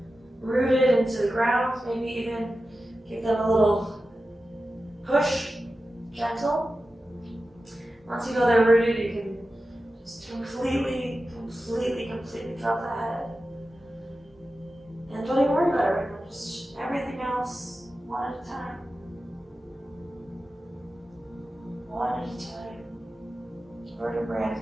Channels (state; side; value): normal; both; correlation 0.93